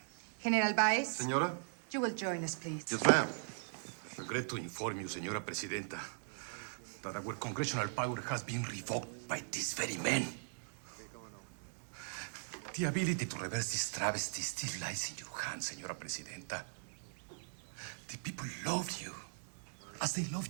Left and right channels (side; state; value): left; silent; digital silence